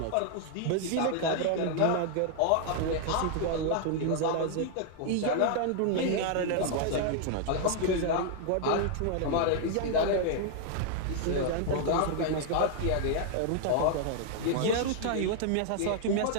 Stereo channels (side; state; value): both; different; correlation 0.00